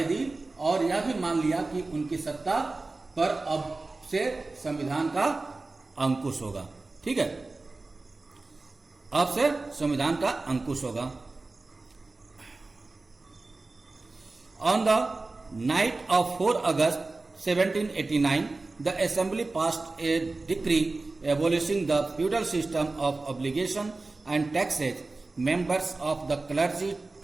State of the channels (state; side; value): quieter; left; 3.4 dB